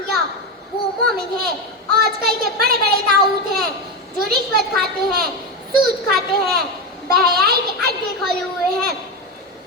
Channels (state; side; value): normal; both; correlation 0.14